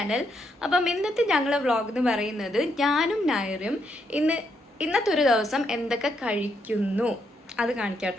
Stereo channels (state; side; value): normal; both; correlation 0.78